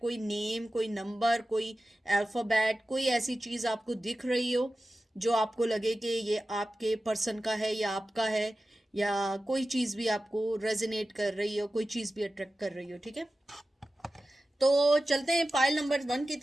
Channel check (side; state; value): both; normal; correlation 0.94